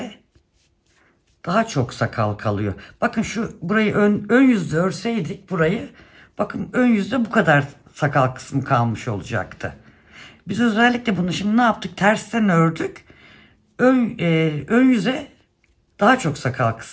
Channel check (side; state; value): both; identical; correlation 1.00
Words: daha çok sakal kalıyor. Bakın burayı ön yüzde örseydik burayı, bakın ön yüzde bu kadar sakal kısmı kalmış olacaktı. Biz özellikle bunu şimdi ne yaptık? Tersten ördük. Ön yüze daha çok sakal